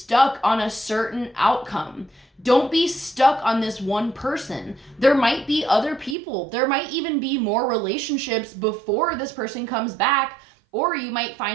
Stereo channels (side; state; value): left; drops out; at 6.2 s